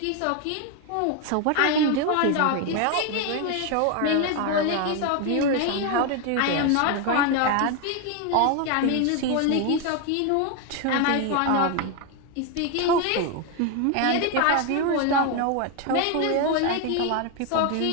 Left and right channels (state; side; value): different; both; correlation 0.01